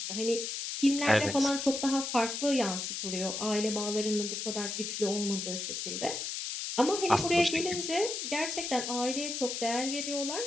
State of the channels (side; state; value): left; noise; hiss, 4 dB below the sound